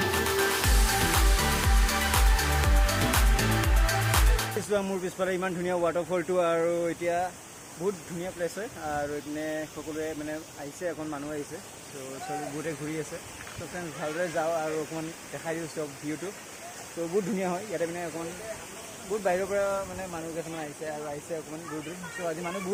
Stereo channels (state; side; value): identical; both; correlation 1.00